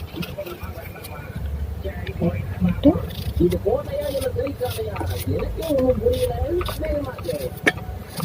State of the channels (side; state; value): both; identical; correlation 1.00